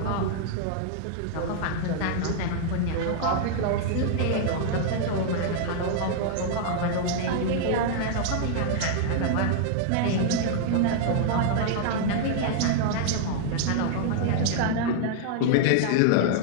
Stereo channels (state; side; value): different; both; correlation -0.01